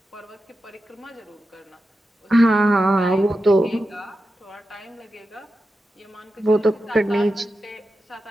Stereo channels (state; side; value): normal; both; correlation 0.91